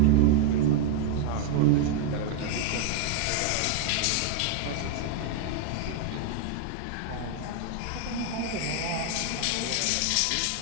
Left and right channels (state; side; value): different; both; correlation 0.00